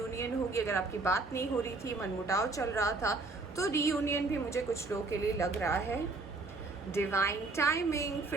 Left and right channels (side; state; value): left; quieter; 3.5 dB